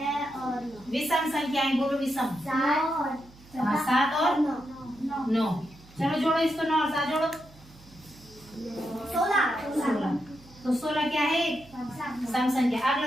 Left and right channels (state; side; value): noise; right; hum, 24 dB below the sound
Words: और 9। विषम संख्याएं बोलो, विषम। 7 और 9। चलो जोड़ो इसको, 9 और 7 जोड़ो, 16। तो 16 क्या है? सम संख्या।